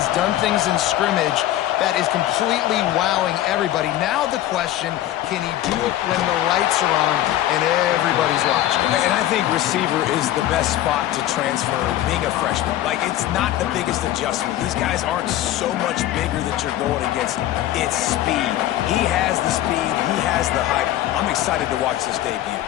done things in scrimmage that is completely wowing everybody. Now the question, can he do it when the lights are on and everybody's watching? And I think receiver is the best spot to transfer being a freshman. Like, it's not the biggest adjustment. These guys aren't so much bigger that you're going against. It's speed. He has the speed. He has the height. I'm excited to watch this debut.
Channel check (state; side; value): quieter; right; 13.5 dB